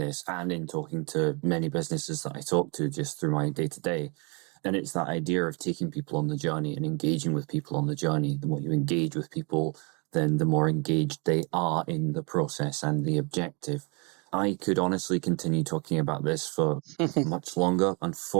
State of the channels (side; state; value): left; quieter; 32.9 dB